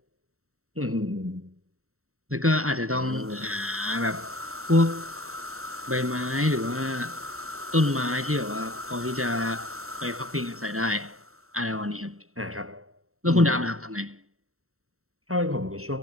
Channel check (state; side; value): late; left; 0.63 ms